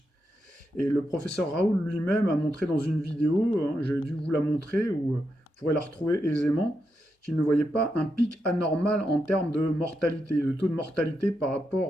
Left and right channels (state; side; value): normal; both; correlation 0.84